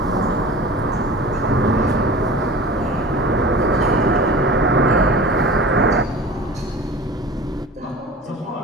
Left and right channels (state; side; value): normal; both; correlation 0.38